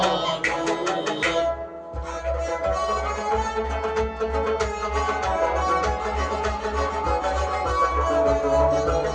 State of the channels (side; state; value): both; identical; correlation 1.00